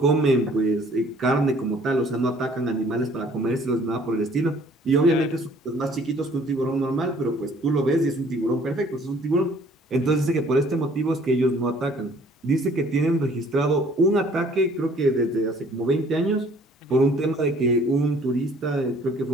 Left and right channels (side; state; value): both; normal; correlation 0.57